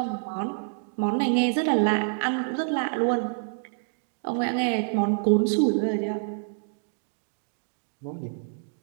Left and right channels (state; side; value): silent; left; digital silence